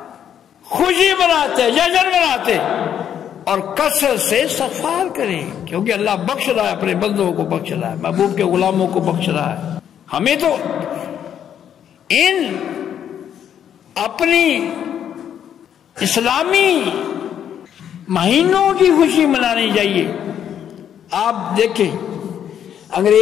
خوشی مناتے، جشن مناتے اور کثرت سے استغفار کریں، کیونکہ اللہ بخش رہا ہے، اپنے بندوں کو بخش رہا ہے، محبوب کے غلاموں کو بخش رہا ہے۔ ہمیں تو ان اپنی اسلامی مہینوں کی خوشی منانی چاہیے۔ آپ دیکھیں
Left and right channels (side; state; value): right; quieter; 9.3 dB